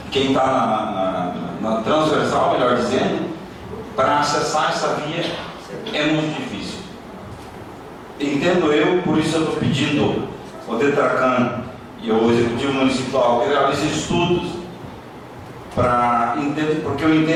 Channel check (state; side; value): identical; both; correlation 1.00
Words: quem está na transversal, melhor dizendo, para acessar essa via é muito difícil. Entendo eu, por isso eu estou pedindo ao DETRACAN e ao Executivo Municipal que realize estudos porque eu